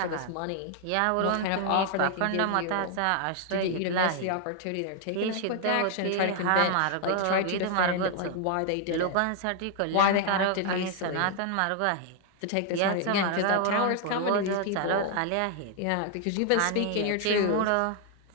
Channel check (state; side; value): different; both; correlation 0.00